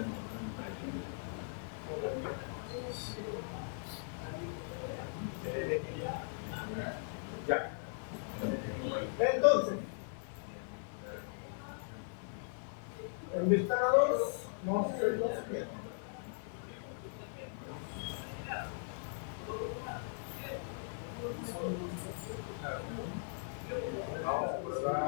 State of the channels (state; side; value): silent; right; 52 dB below the other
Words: Ya. Entonces, en ventana 2 vamos a hacer lo siguiente.